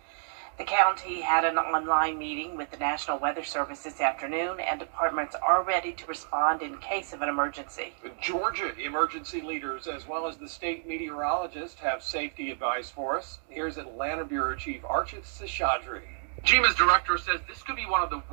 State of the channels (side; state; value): left; silent; 58 dB below the other